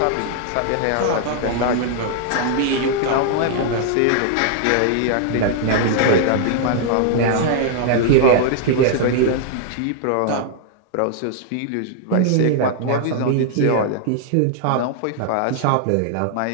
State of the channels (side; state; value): both; different; correlation -0.01